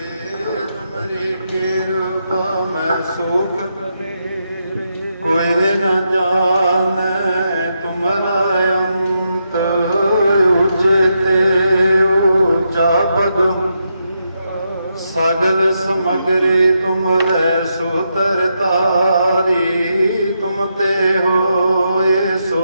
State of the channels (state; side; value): inverted; both; correlation -0.83